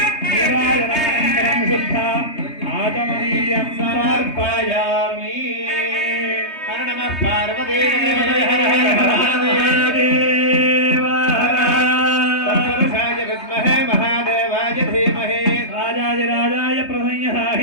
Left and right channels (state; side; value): late; right; 3.2 ms